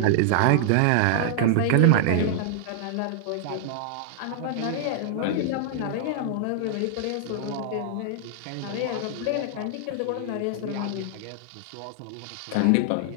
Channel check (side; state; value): both; different; correlation -0.01